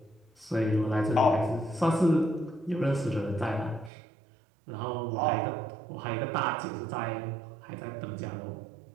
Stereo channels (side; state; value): left; drops out; at 3.9 s